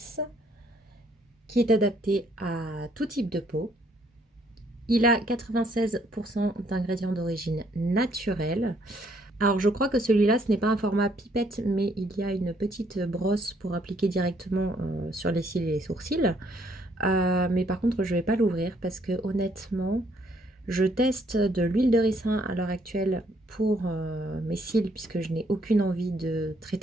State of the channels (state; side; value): normal; both; correlation 0.68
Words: €, qui est adapté à tout type de peau. Il a 96% d'ingrédients d'origine naturelle. Alors je crois que celui-là, ce n'est pas un format pipette, mais il y a une petite brosse pour appliquer directement sur les cils et les sourcils. Mais par contre, je ne vais pas l'ouvrir parce que honnêtement, je teste de l'huile de ricin à l'heure actuelle pour mes cils puisque je n'ai aucune envie de